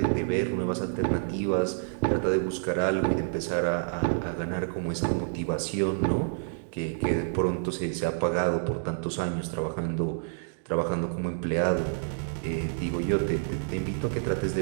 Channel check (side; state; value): left; silent; digital silence